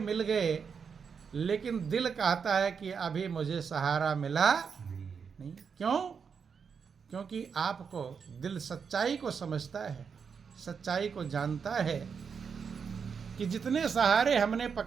गए, लेकिन दिल कहता है कि अभी मुझे सहारा मिला नहीं। क्यों? क्योंकि आपको दिल सच्चाई को समझता है, सच्चाई को जानता है कि जितने सहारे हमने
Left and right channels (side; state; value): left; quieter; 6.3 dB